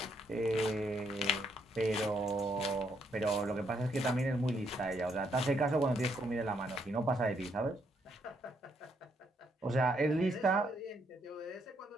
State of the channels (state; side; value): normal; both; correlation 0.74